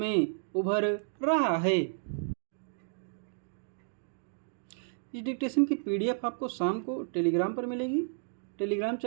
उभर रहा है। इस डिक्टेशन की PDF आपको शाम को टेलीग्राम पर मिलेगी। टेलीग्राम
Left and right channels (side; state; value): left; silent; digital silence